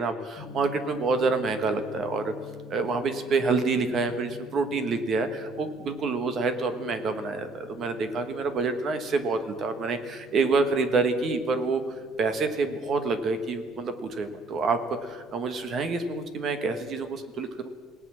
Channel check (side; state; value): left; quieter; 3.4 dB